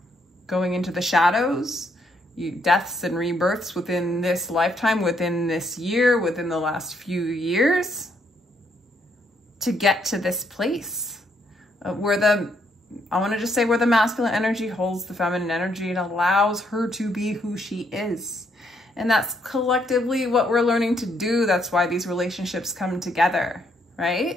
going into the shadows, deaths and rebirths within this lifetime, within this year, within the last few years, to get to this place where I want to just say where the masculine energy holds the feminine energy. It allows her to be who she is. And that's collectively what we're learning to do. That's why these relationships come together,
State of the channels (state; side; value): normal; both; correlation 0.73